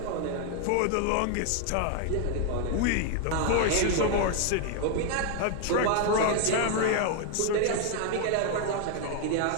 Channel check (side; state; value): both; different; correlation 0.00